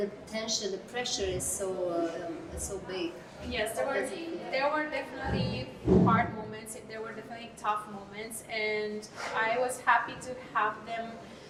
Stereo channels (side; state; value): both; identical; correlation 1.00